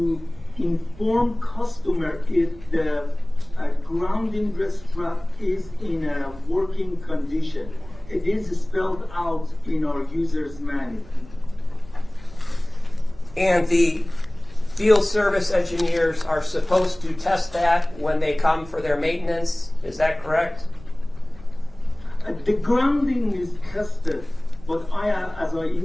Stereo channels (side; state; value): right; noise; rumble, 20 dB below the sound